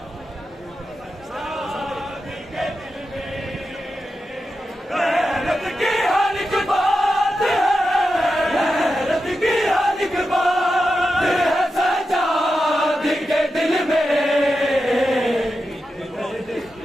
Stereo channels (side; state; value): both; normal; correlation 0.90